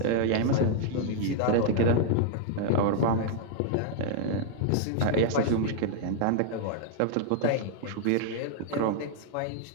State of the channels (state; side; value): different; both; correlation -0.01